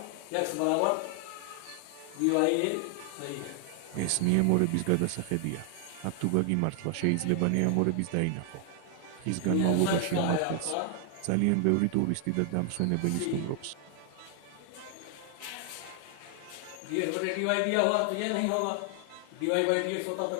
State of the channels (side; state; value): both; different; correlation 0.00